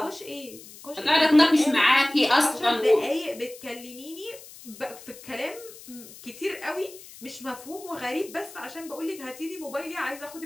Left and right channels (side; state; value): left; noise; hiss, 18 dB below the sound